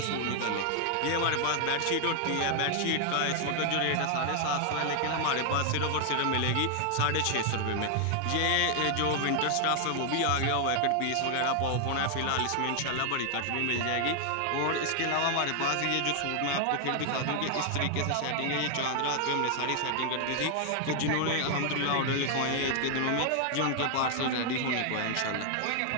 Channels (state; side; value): different; both; correlation 0.00